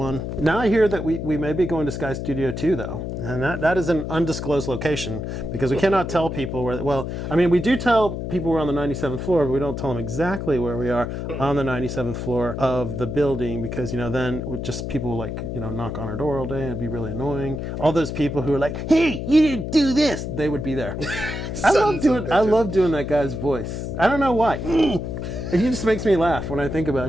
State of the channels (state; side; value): noise; left; hum, 5 dB below the sound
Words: Now I hear that we may be going to Sky Studio 2 though, and that is an undisclosed location because we cannot tell people where. Well, I mean we do tell people we're on the 97th floor, but we don't tell them exactly where we are on the 97th floor of the building because then just people knock on our door all day. It'd be really annoying. All those people who are like, "Hey, you didn't do this," they would be there. I love doing that guy's voice. I don't know why. He just makes me laugh when I think